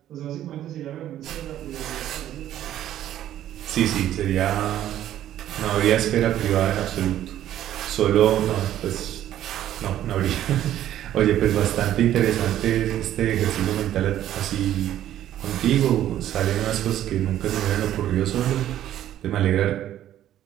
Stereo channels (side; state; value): left; quieter; 12.1 dB